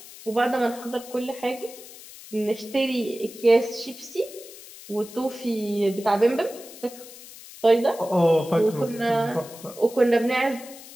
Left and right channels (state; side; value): noise; left; hiss, 17 dB below the sound